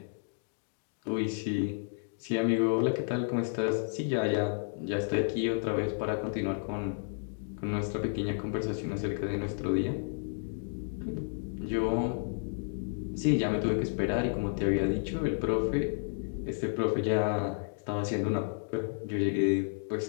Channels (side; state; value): right; silent; digital silence